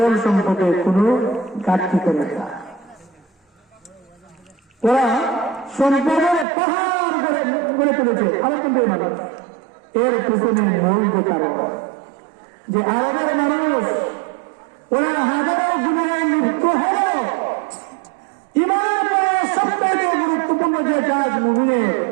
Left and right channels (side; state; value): left; drops out; at 6.5 s